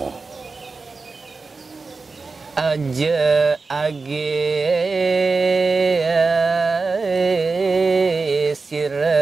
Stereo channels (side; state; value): left; quieter; 4.1 dB